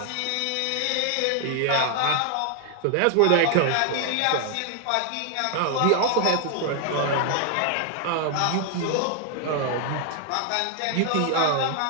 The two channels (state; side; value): different; both; correlation 0.00